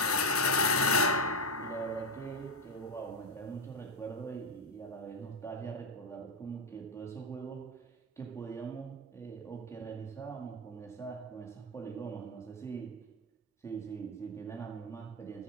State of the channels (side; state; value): both; normal; correlation 0.08